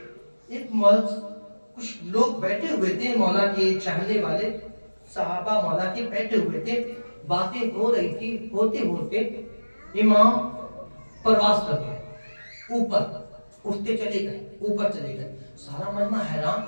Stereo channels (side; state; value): both; inverted; correlation -1.00